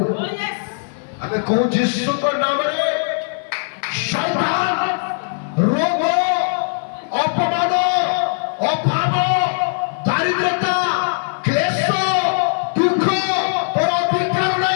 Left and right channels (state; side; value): silent; right; 56 dB below the other